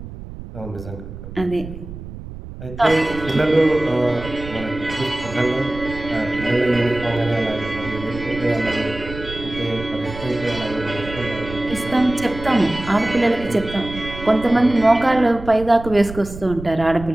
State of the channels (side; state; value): right; noise; rumble, 12 dB below the sound